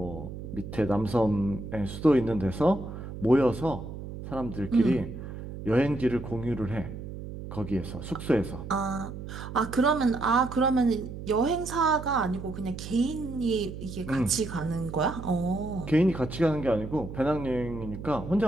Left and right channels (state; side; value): noise; right; hum, 10 dB below the sound